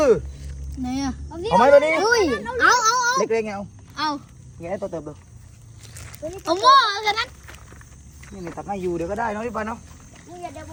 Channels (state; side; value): identical; both; correlation 1.00